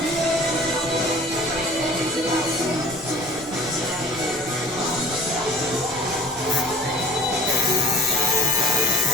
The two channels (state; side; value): normal; both; correlation 0.45